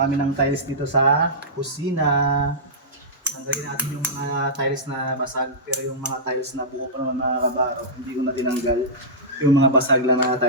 kami ng tiles dito sa kusina. Tanggalin natin yung mga tiles na basag, pero yung mga tiles na buo pa naman mga kabaro, hindi ko na tinanggal. Yung mga basag lang na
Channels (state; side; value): normal; both; correlation -0.14